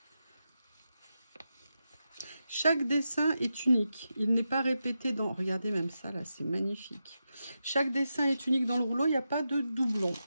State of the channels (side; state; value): both; inverted; correlation -0.89